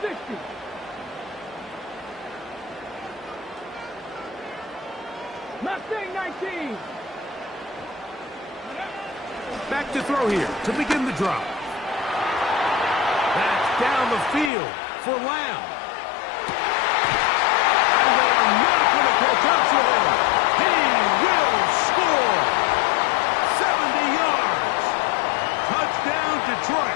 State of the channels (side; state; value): right; drops out; at 14.5 s